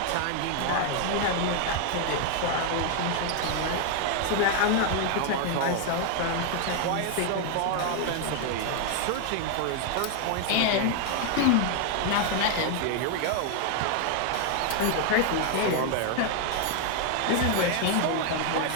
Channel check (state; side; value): different; both; correlation 0.00